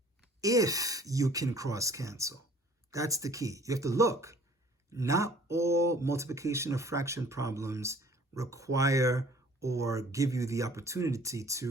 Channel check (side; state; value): both; normal; correlation 0.52